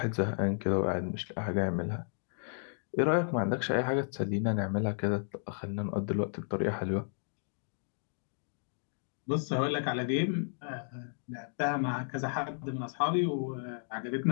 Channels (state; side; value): silent; right; digital silence